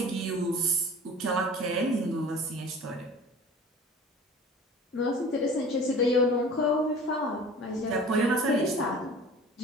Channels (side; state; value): both; normal; correlation 0.42